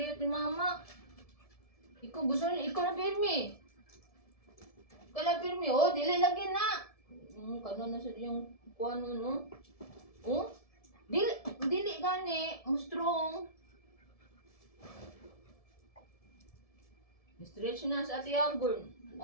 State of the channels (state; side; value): late; right; 1.7 ms